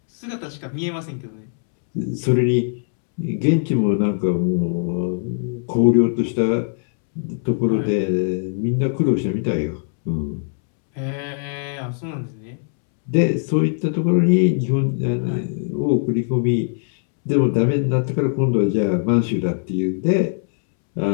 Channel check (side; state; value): right; silent; 65 dB below the other